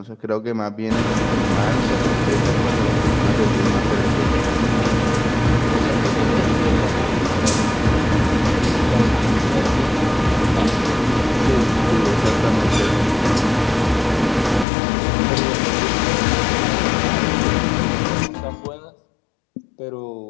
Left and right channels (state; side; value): drops out; right; at 14.7 s